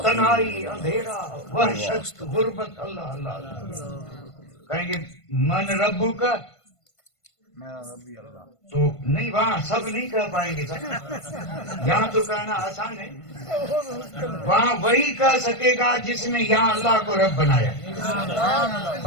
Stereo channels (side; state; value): right; late; 1.5 ms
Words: تنہائی اندھیرا وحشت غربت. اللہ کہیں گے من ربو کا تو نہیں وہاں سب نہیں کہہ پائیں گے. یہاں تو کہنا آسان ہے. وہاں وہی کہہ سکے گا جس نے یہاں اللہ کو رب بنایا.